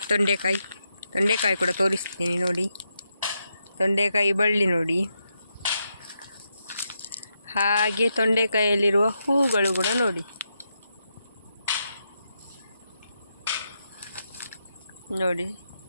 ತೊಂಡೆಕಾಯಿ ಕೂಡ ತೋರಿಸ್ತೀನಿ. ನೋಡಿ ತೊಂಡೆಕಾಯಿ ಬಳ್ಳಿ ನೋಡಿ, ಹಾಗೆ ತೊಂಡೆಕಾಯಿಯಲ್ಲಿರುವ ಹೂಗಳು ಕೂಡ ನೋಡಿ. ನೋಡಿ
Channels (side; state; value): both; inverted; correlation -0.84